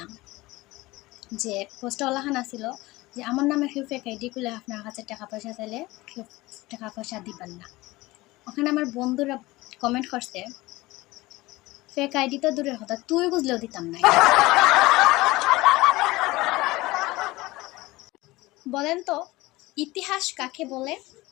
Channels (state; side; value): quieter; right; 20.0 dB